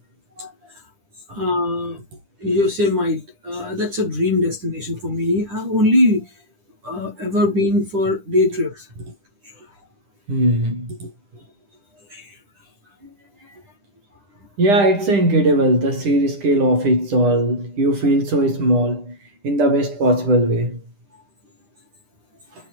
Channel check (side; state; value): left; late; 10 ms